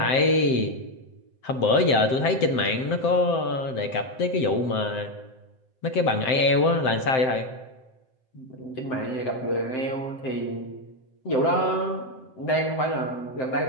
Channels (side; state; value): right; late; 7.7 ms